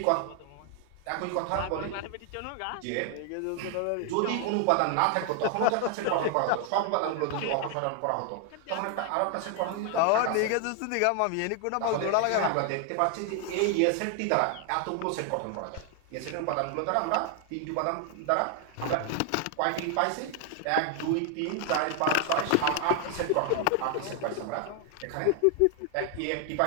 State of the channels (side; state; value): both; different; correlation 0.00